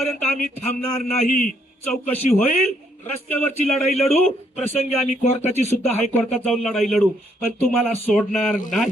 आम्ही थांबणार नाही. चौकशी होईल, रस्त्यावरची लढाई लढू, प्रसंगी आम्ही कोर्टाची सुद्धा हायकोर्टात जाऊन लढाई लढू, पण तुम्हाला सोडणार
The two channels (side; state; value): both; normal; correlation 0.71